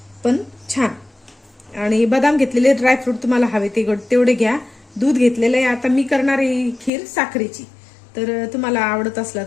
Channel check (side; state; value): right; drops out; at 6.9 s